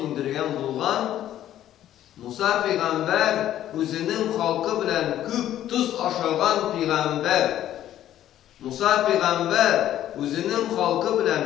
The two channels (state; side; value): quieter; right; 12.1 dB